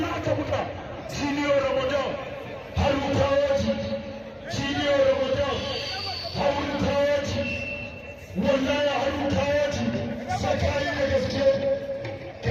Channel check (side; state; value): both; identical; correlation 1.00